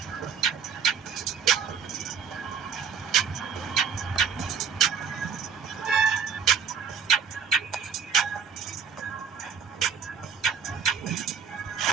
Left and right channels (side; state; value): left; quieter; 6.8 dB